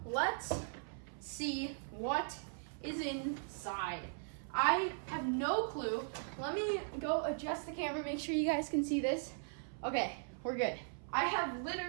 let's see what is inside. I have no clue. Let me go adjust the camera, make sure you guys can see this. Okay, we're good. I have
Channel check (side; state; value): left; silent; 52 dB below the other